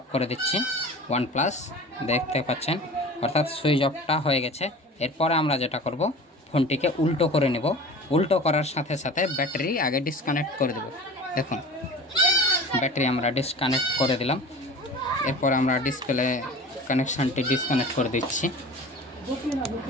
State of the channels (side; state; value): both; normal; correlation 0.38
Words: করে দিচ্ছি, OnePlus দেখতে পাচ্ছেন, অর্থাৎ সুইচ অফটা হয়ে গেছে। এরপরে আমরা যেটা করব, ফোনটিকে উল্টো করে নেব। উল্টো করার সাথে সাথে ব্যাটারি আগে ডিসকানেক্ট করে দেব। দেখুন ব্যাটারি আমরা ডিসকানেক্ট করে দিলাম। এরপর আমরা ডিসপ্লে কানেকশানটি ডিসকানেক্ট করে দিচ্ছি।